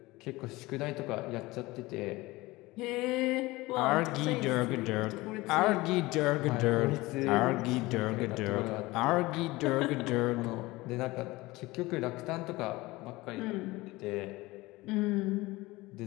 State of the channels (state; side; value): quieter; right; 20.6 dB